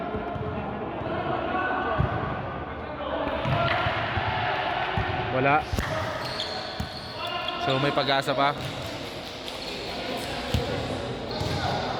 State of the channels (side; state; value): both; identical; correlation 1.00